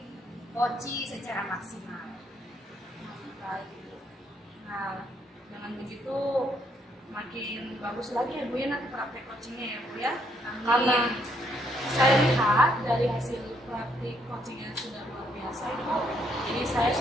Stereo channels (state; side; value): normal; both; correlation 0.72